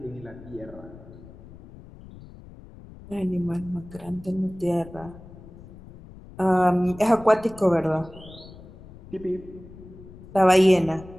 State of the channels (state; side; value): noise; left; rumble, 18 dB below the sound